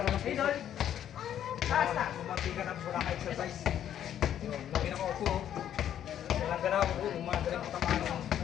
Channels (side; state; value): right; quieter; 10.4 dB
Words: ng puso. Mamati ka na wala ka exercise. Lagi na ko upo. Walang ganaw ko. Umagaling ko tamaan ng